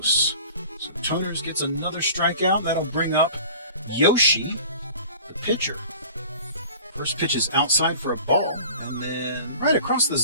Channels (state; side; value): inverted; both; correlation -0.44